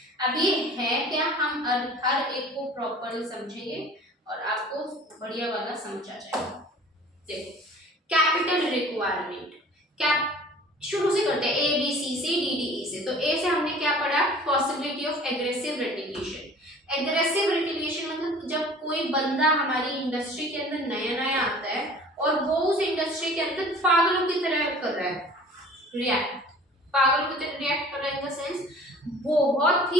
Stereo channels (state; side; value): normal; both; correlation 0.46